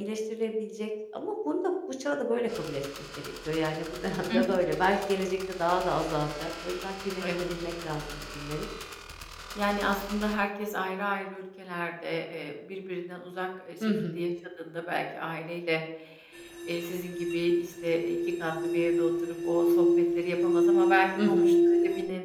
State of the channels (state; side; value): identical; both; correlation 1.00